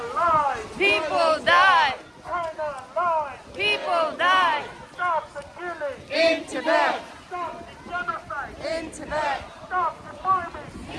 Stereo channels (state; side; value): identical; both; correlation 1.00